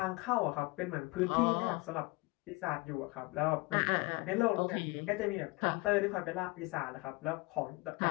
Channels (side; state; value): right; quieter; 24.5 dB